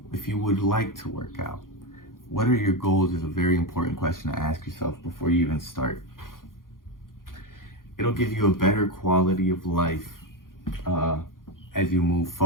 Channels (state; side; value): late; right; 0.90 ms